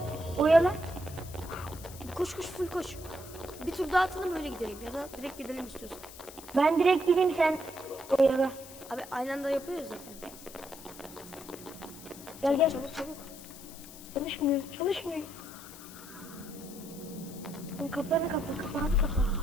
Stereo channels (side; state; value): left; noise; hiss, 16 dB below the sound